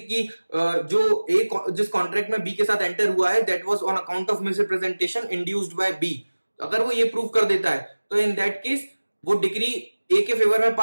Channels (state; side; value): inverted; both; correlation -1.00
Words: जो ए जिस कॉन्ट्रैक्ट में बी के साथ एंटर हुआ है that was on account of misrepresentation induced by B, अगर वो ये प्रूव कर देता है तो इन दैट केस वो डिक्री ए के फेवर में